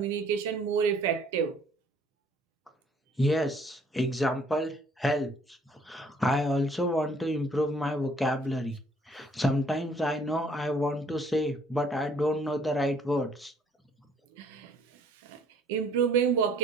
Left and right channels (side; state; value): both; normal; correlation 0.60